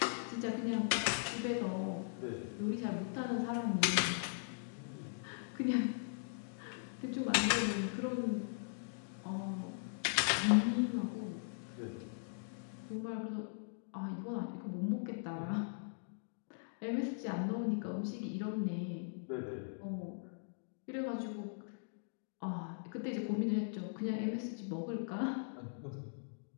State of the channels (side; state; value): right; silent; digital silence